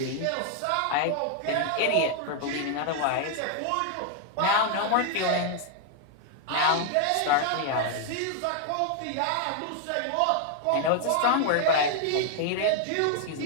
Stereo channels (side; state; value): both; different; correlation 0.00